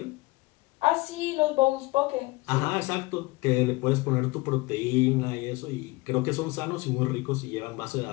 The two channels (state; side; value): quieter; right; 22.2 dB